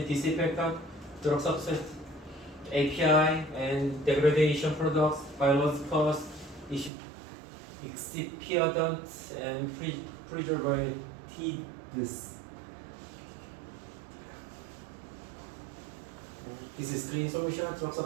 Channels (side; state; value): left; drops out; at 6.9 s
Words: drug substance, API, and degradation products, biologicals, excipients, and preservatives. This is clean solution, drug